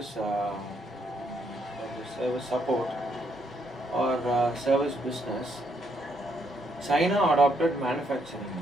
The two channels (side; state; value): both; normal; correlation 0.74